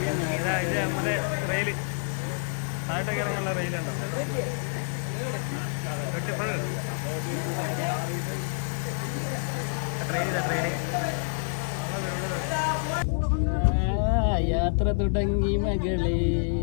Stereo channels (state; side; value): silent; right; 60 dB below the other